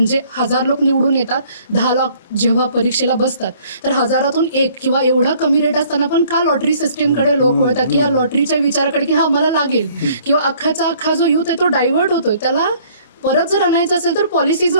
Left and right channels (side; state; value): both; inverted; correlation -0.58